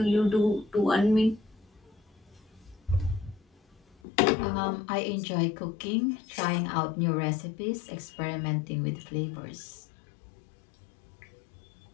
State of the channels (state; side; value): drops out; right; at 4.0 s